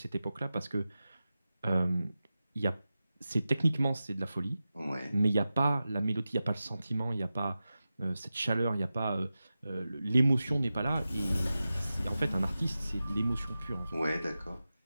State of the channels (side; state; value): both; inverted; correlation -0.94